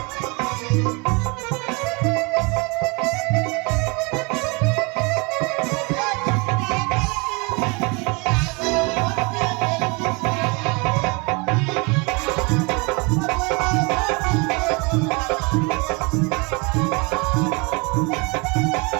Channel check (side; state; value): left; quieter; 29.5 dB